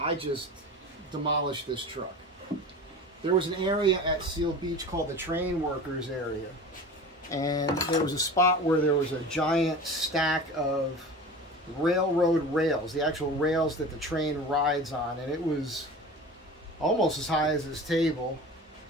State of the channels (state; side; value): normal; both; correlation 0.35